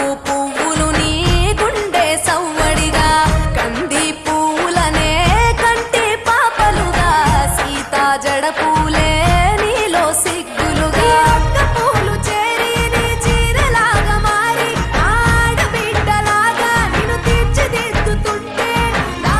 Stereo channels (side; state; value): both; identical; correlation 1.00